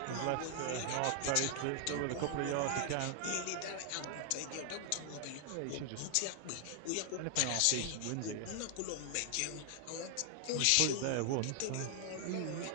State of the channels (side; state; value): both; different; correlation 0.00